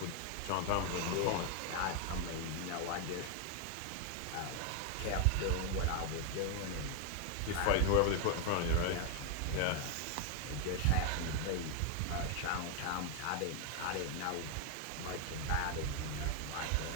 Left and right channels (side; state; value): both; different; correlation 0.01